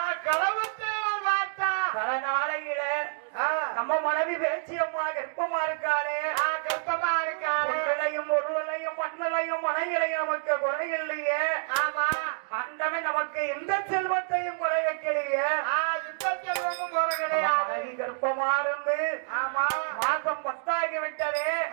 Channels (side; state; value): left; silent; digital silence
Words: பல நாளையில நம்ம மனைவி பேச்சு அம்மா கர்ப்பமா இருக்காளே. கர்ப்பமாயும் ஒருவனையும் மண்ணலையும் மனைகளையும் நமக்கு குறை இல்லையே. ஆமா அண்டவன் நமக்கு எந்த செல்வத்தையும் குறை வைக்கலையே. மனைவி கர்ப்பமா இருந்து மாசம் 10 ஆகிவிட்டதே.